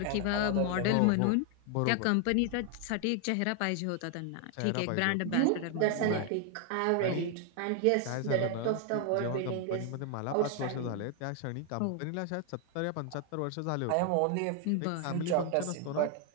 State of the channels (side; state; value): both; different; correlation 0.00